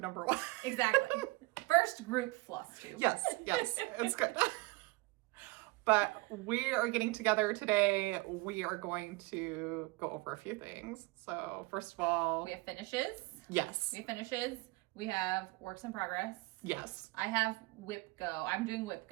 number 1. Exactly. First group Flosstube. Yes, it's good. But we are getting together today. We are going to go over a few things. So first of all, We have finishes. yes, We have finishes. We have works in progress. yes. I have WIPGO. I'm doing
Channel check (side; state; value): left; quieter; 23.4 dB